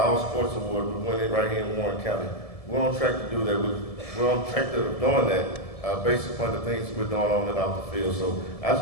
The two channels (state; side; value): late; right; 1.7 ms